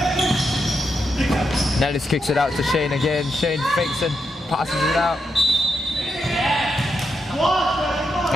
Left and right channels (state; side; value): normal; both; correlation 0.84